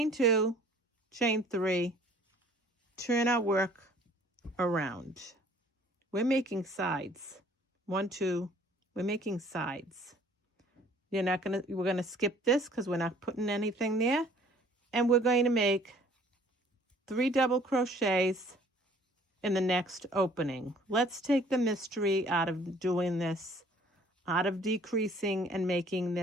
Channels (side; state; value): both; normal; correlation 0.55